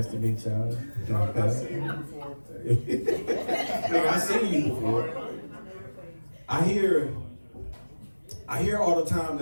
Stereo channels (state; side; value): inverted; both; correlation -1.00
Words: to meet y'all. I've seen you before. I've seen you before. I hear all the time